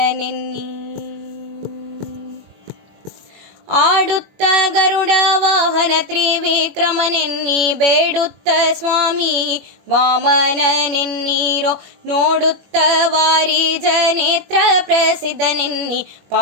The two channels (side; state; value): left; late; 21 ms